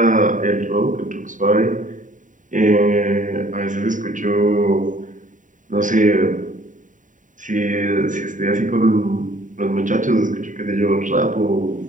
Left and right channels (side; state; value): left; late; 0.37 ms